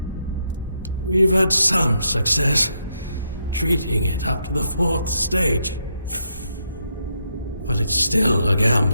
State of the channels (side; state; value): both; inverted; correlation -0.79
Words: We've had some success treating it up to the 4th stage. But it's still a